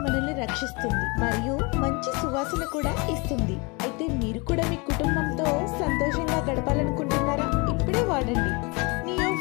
మనల్ని రక్షిస్తుంది మరియు మంచి సువాసన కూడా ఇస్తుంది. అయితే మీరు కూడా మీ కుటుంబంతో సంతోషంగా గడపాలనుకుంటున్నారా? ఇప్పుడే వాడండి neo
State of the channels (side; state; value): right; quieter; 29.1 dB